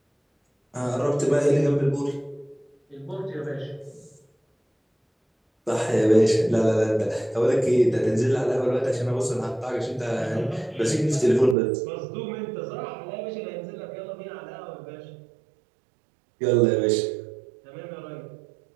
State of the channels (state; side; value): drops out; left; at 11.6 s